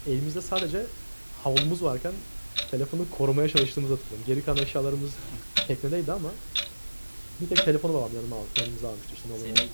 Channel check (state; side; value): inverted; both; correlation -1.00